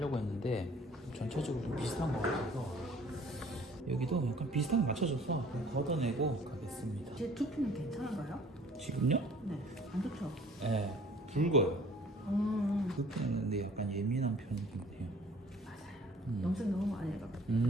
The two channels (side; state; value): both; normal; correlation 0.53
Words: 했는데 전체적으로 좀 비슷한 것 같아서 여기도 약간 비슷하게 맞춰줘서 걷어내고 가겠습니다. 제 두피는 괜찮은가요? 지금요? 네. 안 좋죠? 네, 붉어요. 음. 두피는 근데 약간 예민한 편이긴 해요. 맞아요. 염색 너무 많이 해가지고.